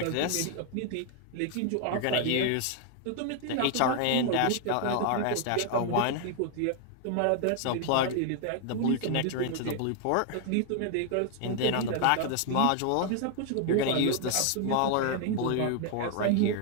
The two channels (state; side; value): different; both; correlation 0.00